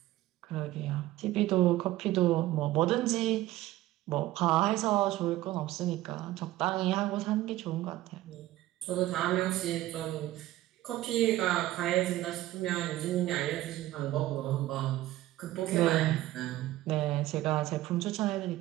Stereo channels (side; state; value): left; quieter; 15.8 dB